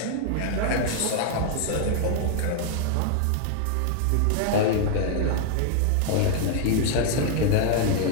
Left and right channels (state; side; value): different; both; correlation 0.00